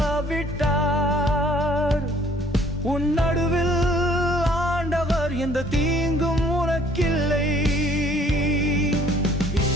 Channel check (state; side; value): normal; both; correlation 0.59